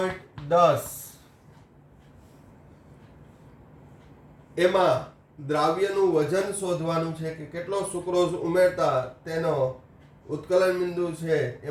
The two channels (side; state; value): both; identical; correlation 1.00